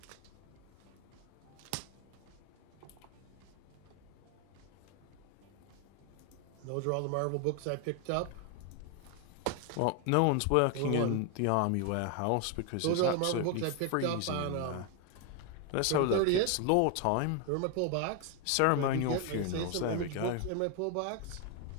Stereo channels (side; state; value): both; different; correlation 0.01